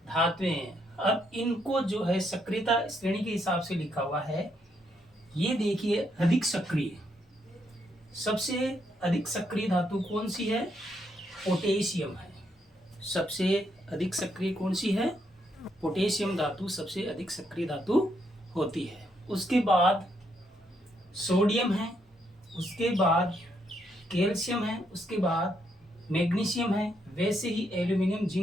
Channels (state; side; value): normal; both; correlation 0.76